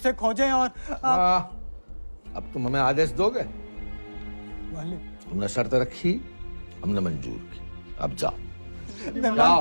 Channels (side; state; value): both; inverted; correlation -1.00